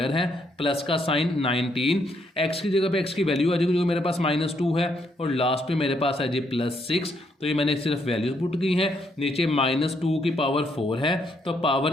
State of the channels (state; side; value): normal; both; correlation 0.74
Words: है, प्लस का साइन 19, x की जगह पे x की वैल्यू आ जाएगी जो कि मेरे पास -2 है, और लास्ट पे मेरे पास है जी +6। तो ये मैंने सिर्फ वैल्यूज पुट की हैं, नीचे -2 की पावर 4 है तो